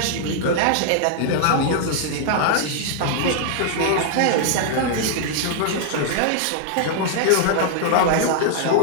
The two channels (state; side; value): different; both; correlation -0.01